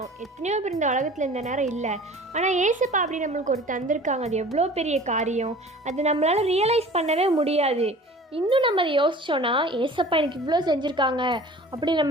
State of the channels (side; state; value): both; normal; correlation 0.44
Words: எத்தனையோ பேர் இந்த உலகத்தில் இந்த நேரம் இல்லை, ஆனால் ஏசப்பா அப்படி நம்மளுக்கு ஒரு தந்திருக்காங்க. அது எவ்வளோ பெரிய காரியம், அது நம்மளால் ரியலைஸ் பண்ணவே முடியாது. இன்னும் நம்ம அதை யோசித்தோன்னா, ஏசப்பா எனக்கு இவ்வளோ செஞ்சுருக்காங்க அப்படி